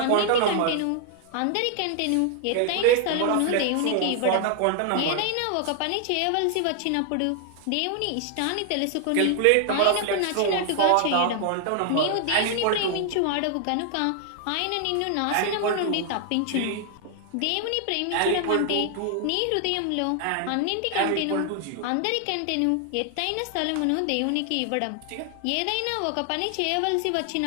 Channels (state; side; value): different; both; correlation 0.00